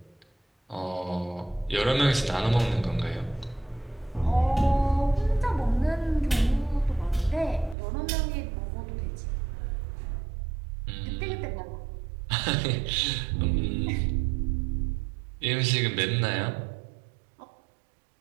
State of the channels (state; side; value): drops out; left; at 7.8 s